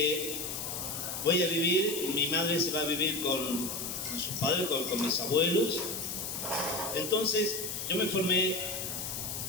voy a vivir, mi madre se va a vivir con sus padres, con mis abuelos. Entonces, yo me formé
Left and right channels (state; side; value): noise; left; hiss, 5 dB below the sound